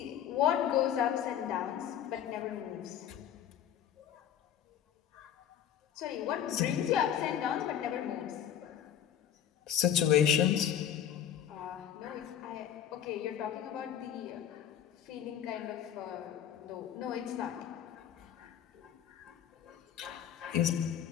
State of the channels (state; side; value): quieter; right; 9.9 dB